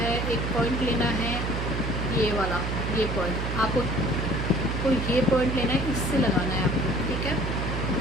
एक पॉइंट लेना है, ये वाला, ये पॉइंट आपको ये पॉइंट लेना है, इससे लगाना है आपको, ठीक है।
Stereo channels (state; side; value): noise; right; hum, 2 dB below the sound